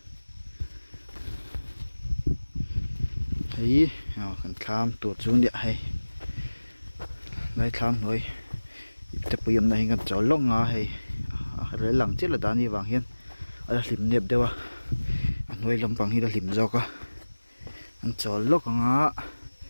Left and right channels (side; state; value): both; inverted; correlation -1.00